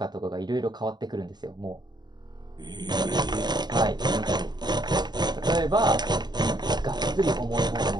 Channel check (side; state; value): left; late; 0.21 ms